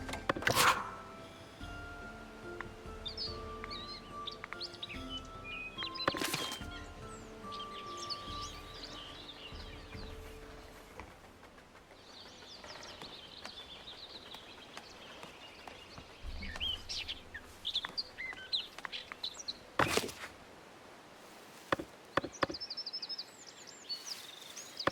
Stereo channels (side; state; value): both; identical; correlation 1.00